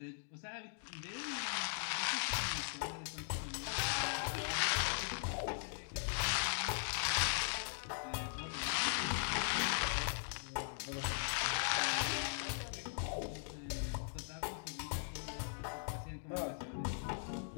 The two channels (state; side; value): silent; right; digital silence